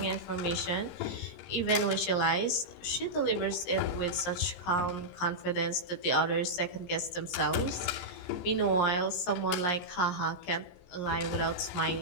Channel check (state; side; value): late; right; 17 ms